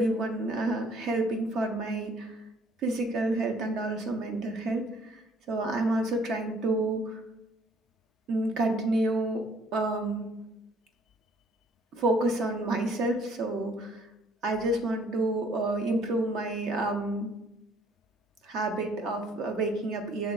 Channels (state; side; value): normal; both; correlation 0.60